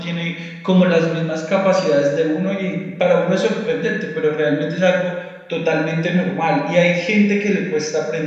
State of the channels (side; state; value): both; identical; correlation 1.00